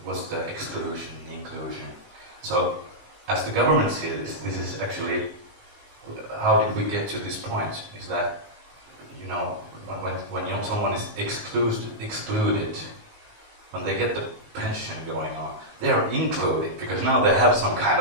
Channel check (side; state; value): left; late; 19 ms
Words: what's the exclusion, inclusion. So as the government sees this is actually, how did we get to this point? Is that, you know, when someone is excluded, when they get the pension going on, they are included because now they have some kind